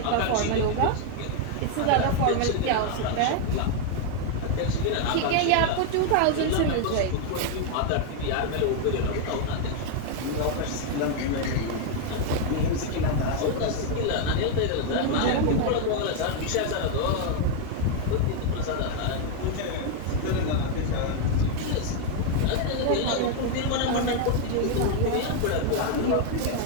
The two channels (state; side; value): different; both; correlation 0.00